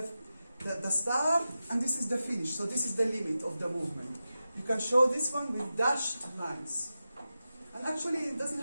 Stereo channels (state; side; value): inverted; both; correlation -0.92